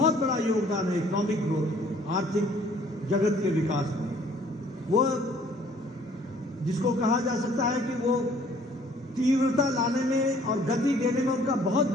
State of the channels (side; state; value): both; normal; correlation 0.58